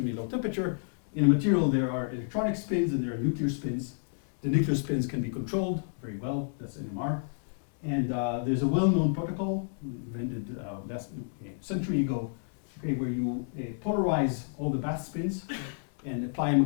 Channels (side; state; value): right; silent; digital silence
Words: low temperature. In a material, there are electronic spins and there are nuclear spins. The nuclear spins can be controlled very well. That's NMR. And there's a well-known protocol invented last century ago, okay, where you polarize all the bath spins and apply a